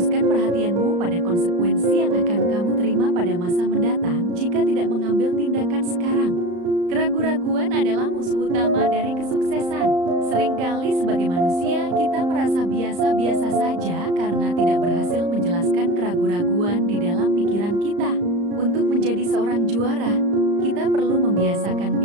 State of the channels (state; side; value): late; left; 34 ms